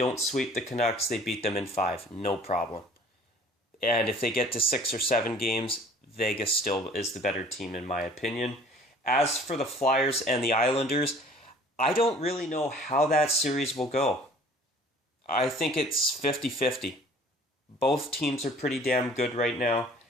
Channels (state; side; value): normal; both; correlation 0.51